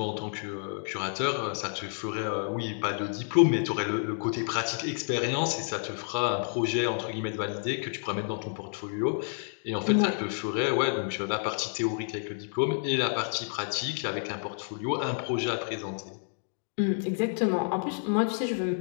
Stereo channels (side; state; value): right; silent; 57 dB below the other